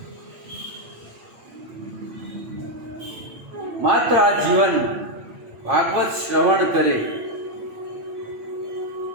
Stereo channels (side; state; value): left; late; 8.6 ms